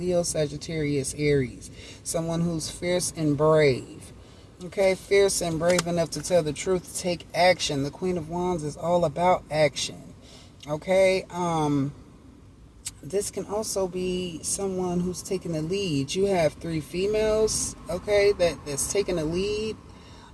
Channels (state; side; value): identical; both; correlation 1.00